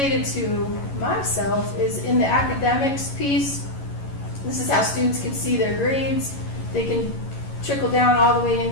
to myself is in the academics piece. This is how students can see their grades. They can trickle down all the way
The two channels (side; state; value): right; late; 11 ms